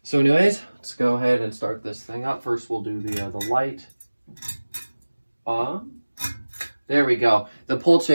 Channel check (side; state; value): both; inverted; correlation -1.00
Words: So anyways, let's go ahead and start this thing up. First, we'll do the light on. There we go. The pull